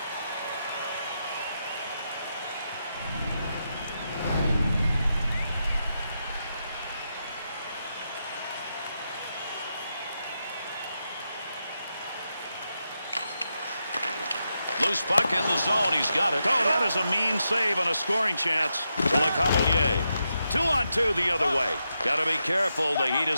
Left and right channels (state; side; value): inverted; both; correlation -0.85